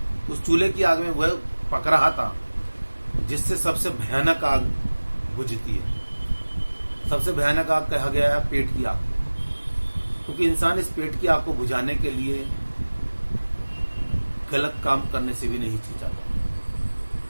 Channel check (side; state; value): both; inverted; correlation -1.00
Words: उस चूल्हे की आग में वह पक रहा था जिससे सबसे भयानक आग बुझती है। सबसे भयानक आग कहा गया है पेट की आग, क्योंकि इंसान इस पेट की आग को बुझाने के लिए गलत काम करने से भी नहीं हिचकिचाता।